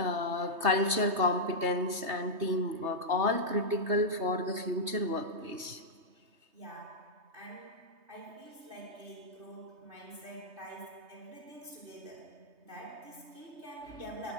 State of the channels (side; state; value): left; late; 3.2 ms